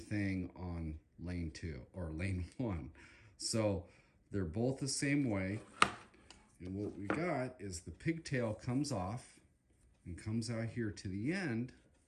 on lane 2 or lane 1. So they're both the same way. And what we got is the pigtail comes off and comes out here to the end.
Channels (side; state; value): both; identical; correlation 1.00